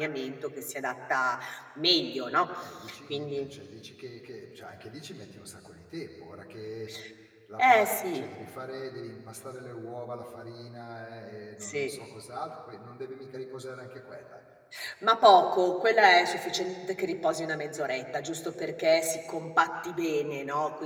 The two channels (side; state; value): both; identical; correlation 1.00